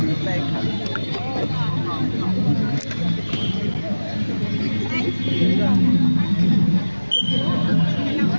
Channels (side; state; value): both; inverted; correlation -1.00